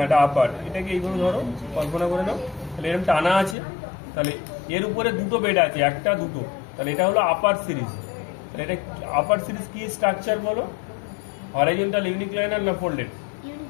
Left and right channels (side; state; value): right; drops out; at 3.6 s